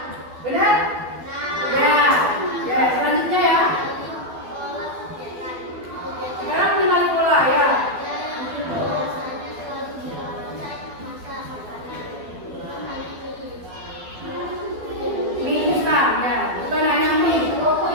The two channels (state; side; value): late; left; 12 ms